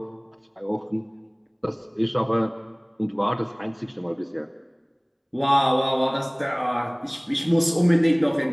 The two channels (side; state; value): both; identical; correlation 1.00